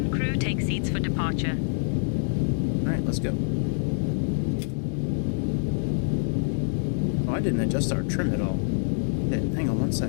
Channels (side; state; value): right; silent; digital silence